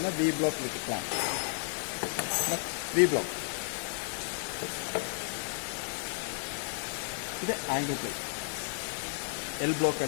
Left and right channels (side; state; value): right; silent; digital silence